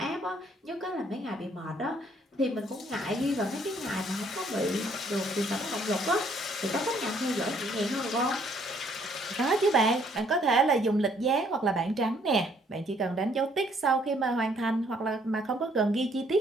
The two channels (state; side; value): normal; both; correlation 0.65